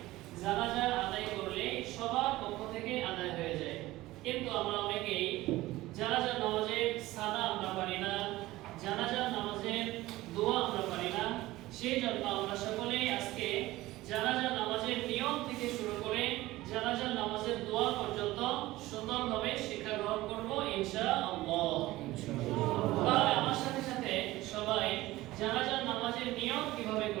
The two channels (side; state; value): left; quieter; 17.7 dB